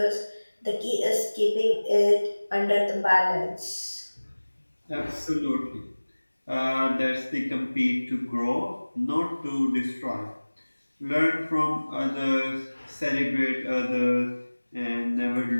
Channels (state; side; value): inverted; both; correlation -1.00